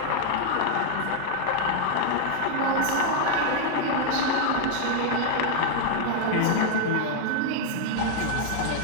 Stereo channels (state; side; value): different; both; correlation 0.00